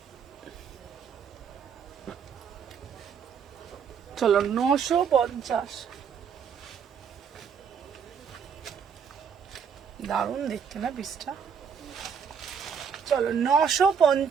চলো 950, দারুণ দেখতে না পিসটা। চলো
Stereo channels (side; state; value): left; quieter; 6.9 dB